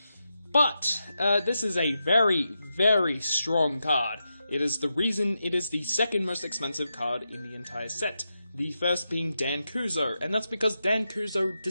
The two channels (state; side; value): inverted; both; correlation -0.87